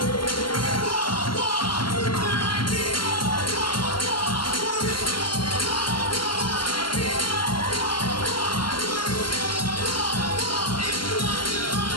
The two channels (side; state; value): right; late; 0.72 ms